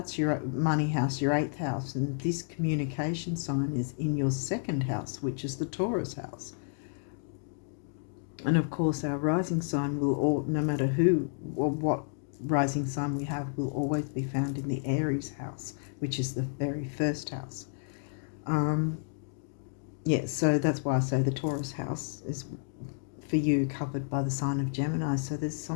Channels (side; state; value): right; silent; digital silence